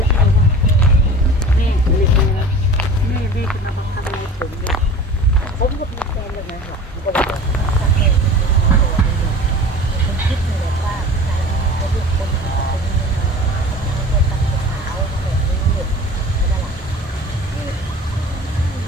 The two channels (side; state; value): both; normal; correlation 0.40